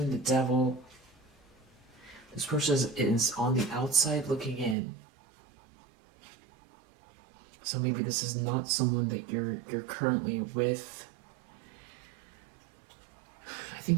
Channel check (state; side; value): drops out; left; at 4.8 s